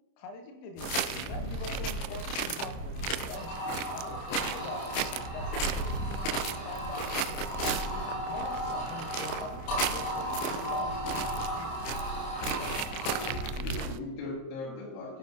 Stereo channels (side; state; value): right; late; 30 ms